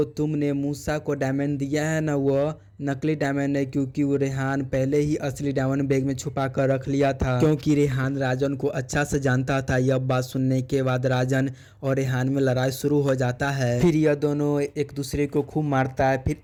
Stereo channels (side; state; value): both; identical; correlation 1.00